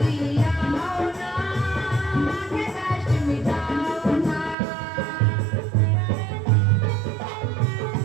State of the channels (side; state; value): left; drops out; at 4.5 s